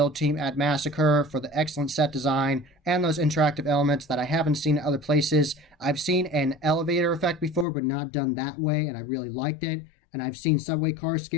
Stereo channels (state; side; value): drops out; right; at 7.7 s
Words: team at Massacre for the excellent set design and those interactive elements that I haven't seen in other places. I've seen an elevator effect before, but not done that way, and I really liked it. And I've seen subway car